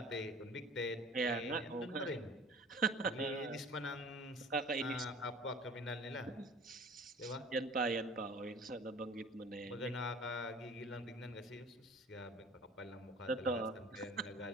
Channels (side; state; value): both; normal; correlation 0.45